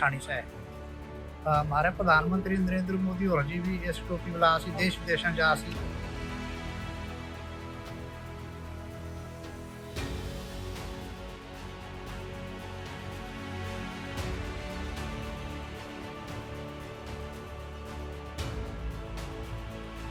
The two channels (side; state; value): both; identical; correlation 1.00